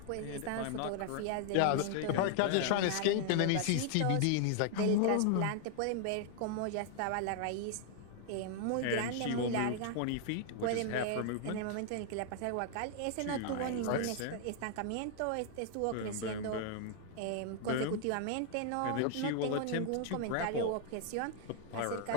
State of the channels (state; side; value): different; both; correlation 0.00